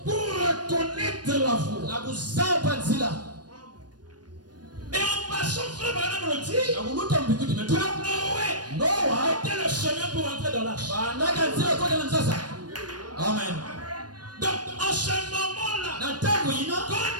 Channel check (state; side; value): late; left; 0.69 ms